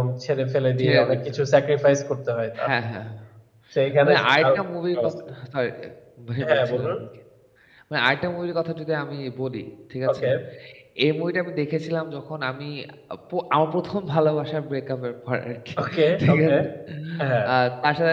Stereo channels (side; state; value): both; identical; correlation 1.00